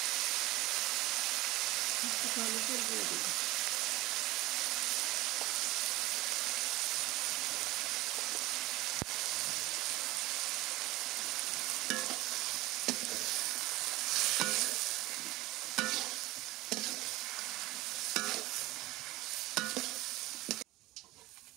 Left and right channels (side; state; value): left; quieter; 19.1 dB